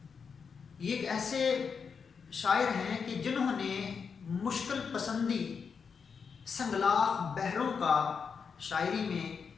یہ ایک ایسے شاعر ہیں کہ جنہوں نے مشکل پسندی سنگلاخ بحروں کا شاعری میں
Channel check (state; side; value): quieter; right; 6.0 dB